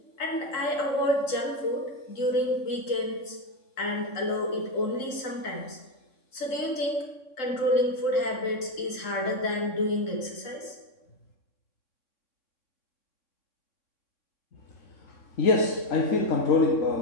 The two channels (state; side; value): late; right; 3.8 ms